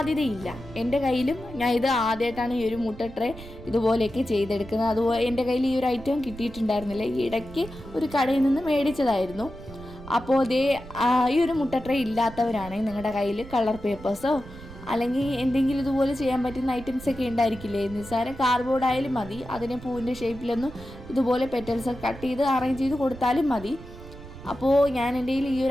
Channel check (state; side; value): noise; right; rumble, 15 dB below the sound